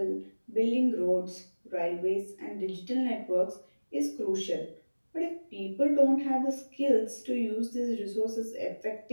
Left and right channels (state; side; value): inverted; both; correlation -1.00